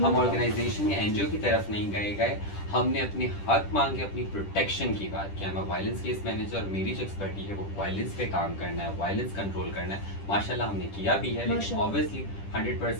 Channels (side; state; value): right; late; 10 ms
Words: ऑर्गेनाइजेशन या एनजीओ की तरफ नहीं गए। हमने अपने हक मांगे, अपनी प्रोटेक्शन की बात किया। मैं वायलेंस केस मैनेजर, मेरी जो एक्सपर्टी है वो वायलेंस पे काम करना है, वायलेंस कंट्रोल करना है। माशाल्लाह हमने किया भी है, लेकिन ऑब्वियसली